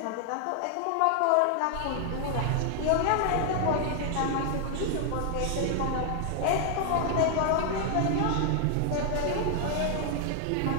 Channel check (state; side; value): different; both; correlation 0.00